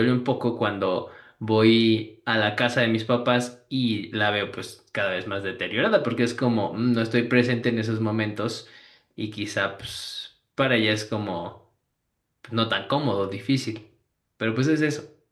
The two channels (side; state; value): both; identical; correlation 1.00